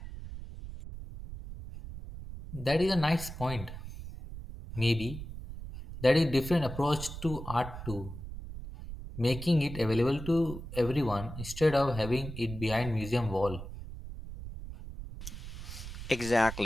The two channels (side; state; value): right; noise; rumble, 10 dB below the sound